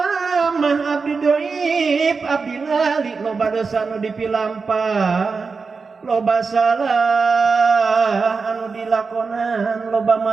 abdi doib abdi lali loba dosa anu dipilampah loba salah anu dilakonan loba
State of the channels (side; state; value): left; quieter; 4.7 dB